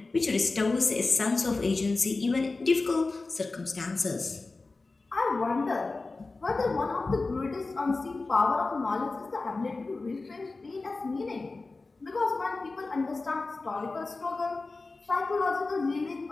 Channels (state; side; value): quieter; right; 3.6 dB